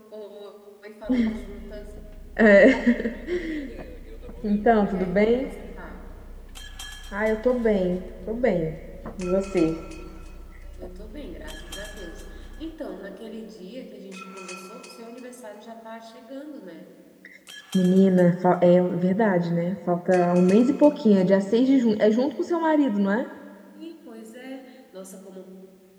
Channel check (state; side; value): identical; both; correlation 1.00